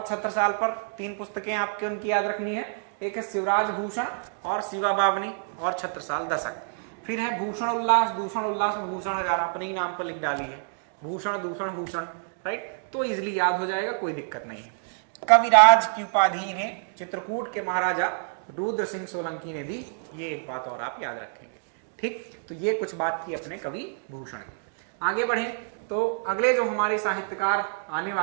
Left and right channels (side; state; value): left; silent; digital silence